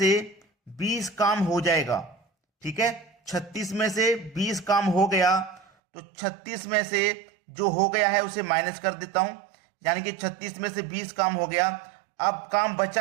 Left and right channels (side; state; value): left; drops out; at 5.7 s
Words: 20 काम हो जाएगा। ठीक है, 36 में से 20 काम हो गया तो 36 में से जो हो गया है उसे माइनस कर देता हूं। यानी कि 36 में से 20 काम हो गया। अब काम